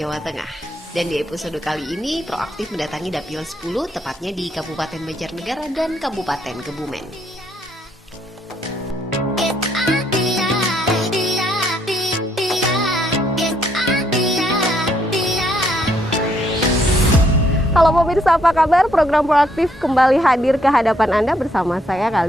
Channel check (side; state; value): both; normal; correlation 0.71